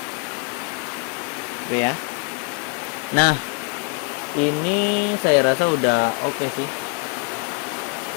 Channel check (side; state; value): right; quieter; 34.8 dB